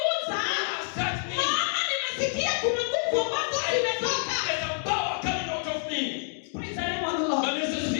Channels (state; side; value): silent; right; 58 dB below the other